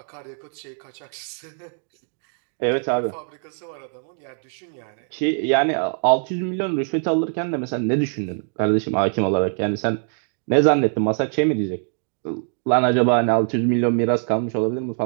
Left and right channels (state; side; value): silent; left; 57 dB below the other